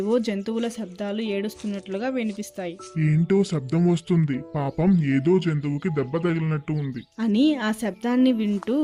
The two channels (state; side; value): identical; both; correlation 1.00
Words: జంతువుల శబ్దాలు ఏడుస్తున్నట్లుగా వినిపిస్తాయి. ఏంటో శబ్దం వస్తుంది, పాపం ఏదో జంతువుకి దెబ్బ తగిలినట్టు ఉంది అని ఆ శబ్దాన్ని వింటూ